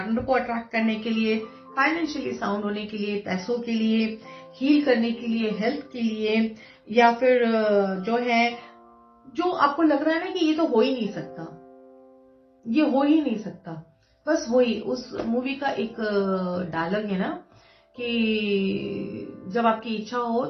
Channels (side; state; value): both; identical; correlation 1.00